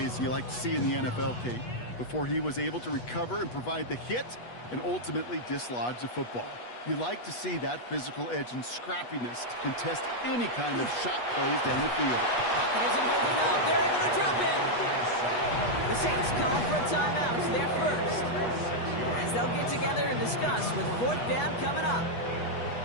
you like to see in the NFL, Kate, before he was able to recover and provide the hit and ultimately dislodge the football. You like to see that physical edge and scrappiness to contest any kind of shot plays down the field. Pocket isn't holding up. They're able to drop it. The Saints calling for a timeout. They're first. As they'll get together and discuss with 4th down coming up.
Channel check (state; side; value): late; right; 8.2 ms